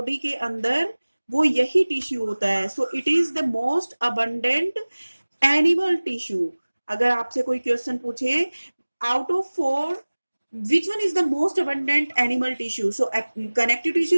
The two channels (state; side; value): inverted; both; correlation -1.00